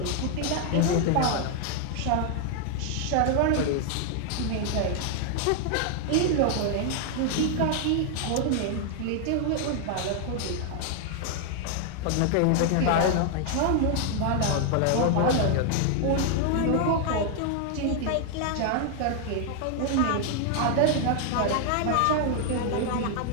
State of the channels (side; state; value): both; different; correlation 0.00